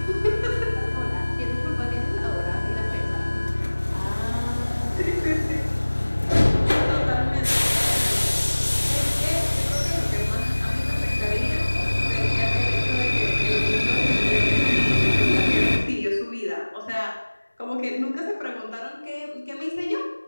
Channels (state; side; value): inverted; both; correlation -1.00